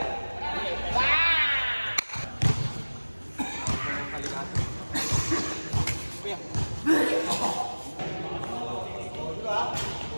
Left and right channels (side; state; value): both; inverted; correlation -1.00